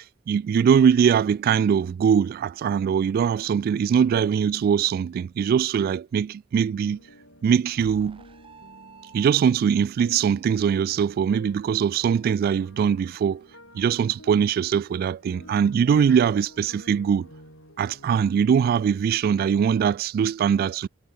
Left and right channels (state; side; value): quieter; left; 7.2 dB